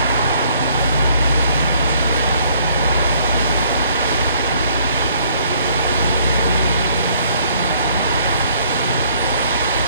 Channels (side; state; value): both; inverted; correlation -0.62